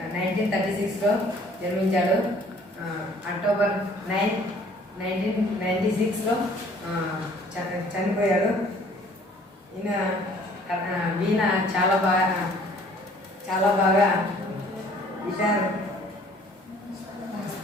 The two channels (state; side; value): normal; both; correlation 0.56